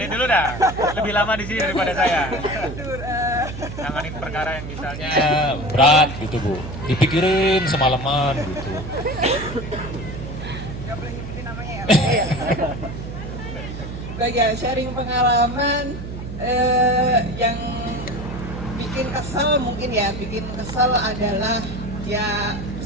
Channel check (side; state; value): right; noise; hum, 9 dB below the sound